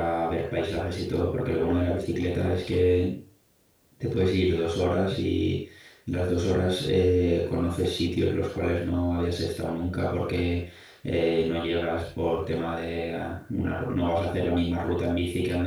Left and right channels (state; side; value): identical; both; correlation 1.00